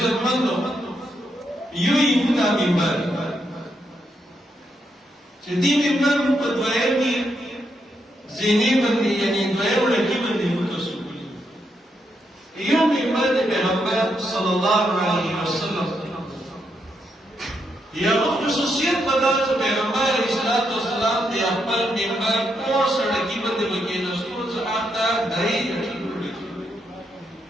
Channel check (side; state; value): both; normal; correlation 0.80